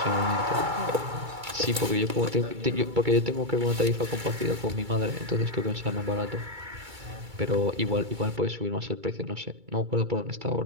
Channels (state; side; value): late; left; 2.3 ms